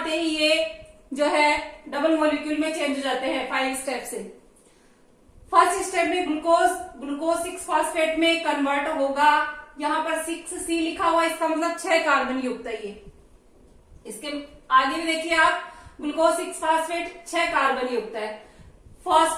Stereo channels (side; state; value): both; identical; correlation 1.00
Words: ही ये जो है डबल मॉलिक्यूल में चेंज हो जाते हैं 5 स्टेप से। फर्स्ट स्टेप में ग्लूकोज 6 फॉस्फेट में कन्वर्ट होगा। यहां पर 6C लिखा हुआ है, इसका मतलब 6 कार्बन युक्त है ये। इसके आगे भी देखिए आप, ग्लूकोज 6 फॉस्फेट 6 कार्बन युक्त है।